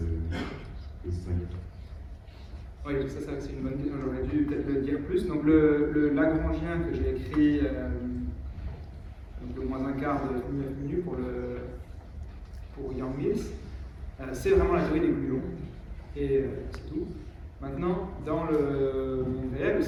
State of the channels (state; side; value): identical; both; correlation 1.00